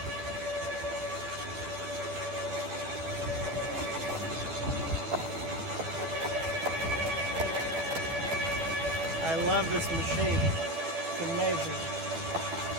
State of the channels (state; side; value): late; left; 12 ms